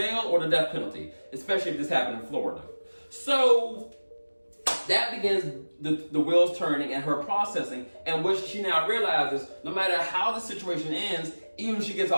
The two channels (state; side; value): inverted; both; correlation -1.00